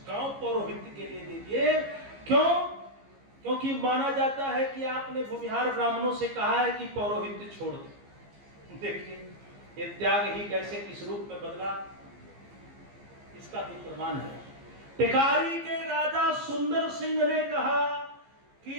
गांव पौरोहित्य के लिए दे दिए। क्यों? क्योंकि माना जाता है कि आपने भूमिहार ब्राह्मणों से कहा है कि पौरोहित्य छोड़ दो। देखिए ये त्याग ही कैसे किस रूप में बदला, इसका भी प्रमाण है। टिकारी के राजा सुंदर सिंह ने कहा कि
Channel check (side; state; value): left; late; 15 ms